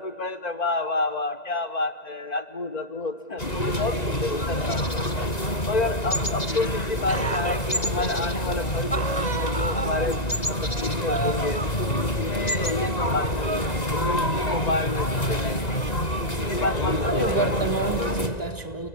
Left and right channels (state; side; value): late; right; 1.9 ms